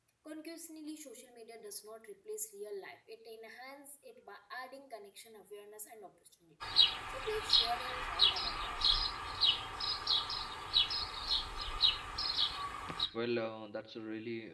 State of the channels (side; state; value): both; identical; correlation 1.00